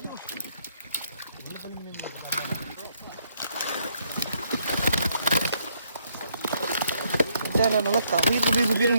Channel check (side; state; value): both; inverted; correlation -0.72